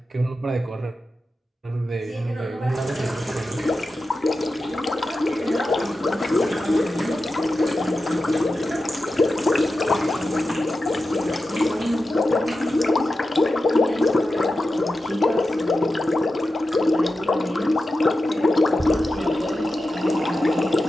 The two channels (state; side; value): normal; both; correlation 0.91